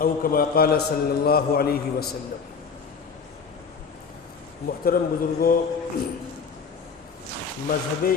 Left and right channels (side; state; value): right; quieter; 5.6 dB